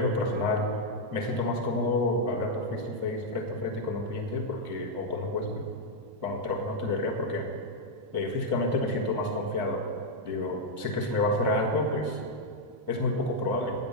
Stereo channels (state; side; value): late; left; 2.4 ms